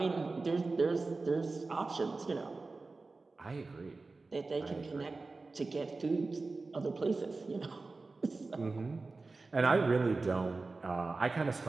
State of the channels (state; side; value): quieter; left; 3.7 dB